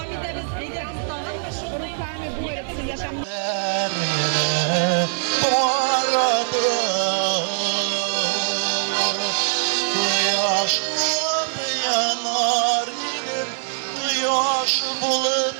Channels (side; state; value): left; silent; digital silence